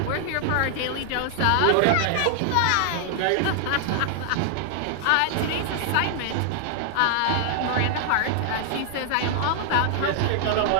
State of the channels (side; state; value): both; different; correlation 0.00